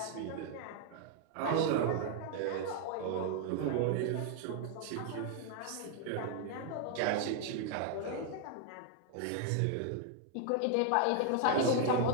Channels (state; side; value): different; both; correlation 0.00